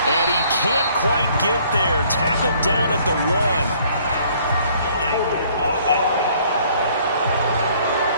And he can't quite get there. Tackled down at the 1.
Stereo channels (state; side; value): inverted; both; correlation -0.60